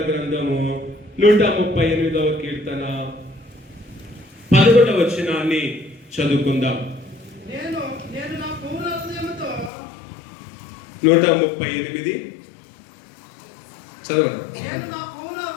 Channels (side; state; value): right; drops out; at 9.7 s